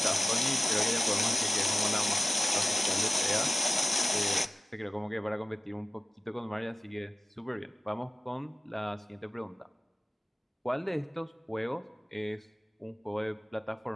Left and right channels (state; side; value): normal; both; correlation 0.95